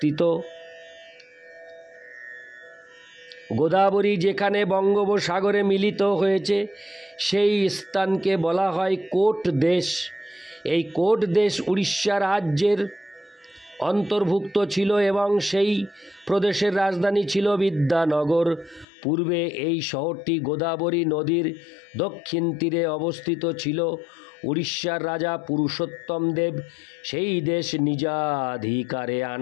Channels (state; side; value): drops out; right; at 18.9 s